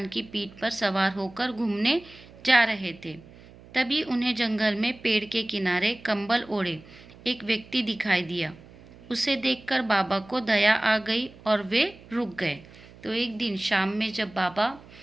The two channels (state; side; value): noise; right; hum, 21 dB below the sound